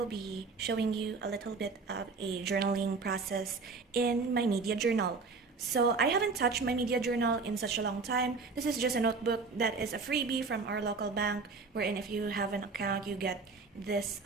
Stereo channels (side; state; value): left; quieter; 4.4 dB